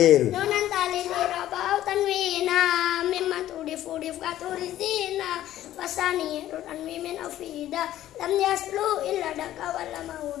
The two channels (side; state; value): right; quieter; 13.2 dB